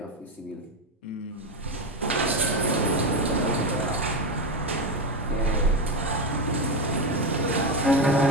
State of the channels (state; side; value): normal; both; correlation 0.13